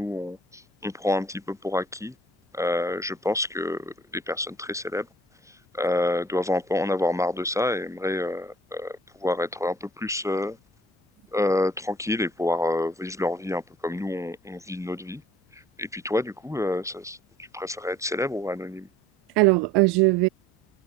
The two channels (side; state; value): both; normal; correlation 0.51